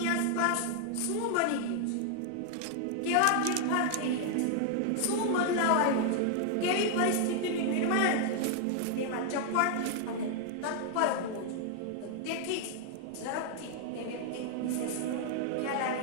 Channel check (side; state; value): both; different; correlation 0.00